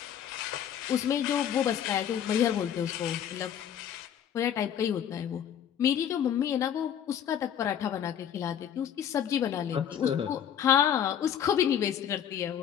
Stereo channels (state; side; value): quieter; right; 9.3 dB